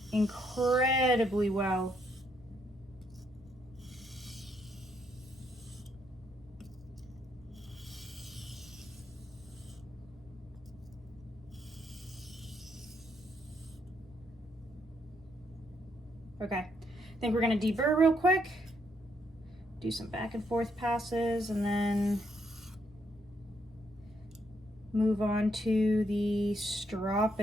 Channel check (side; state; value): left; noise; rumble, 23 dB below the sound